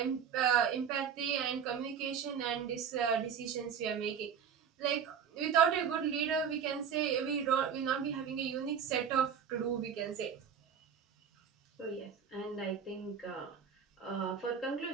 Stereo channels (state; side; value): quieter; left; 7.4 dB